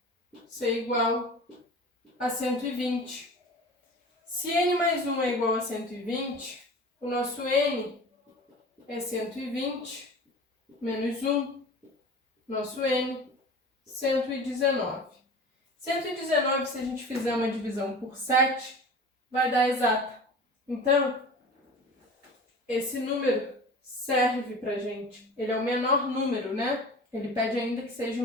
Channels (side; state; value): both; normal; correlation 0.37